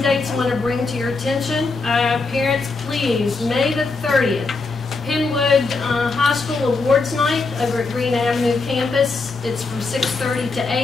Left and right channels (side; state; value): right; quieter; 3.9 dB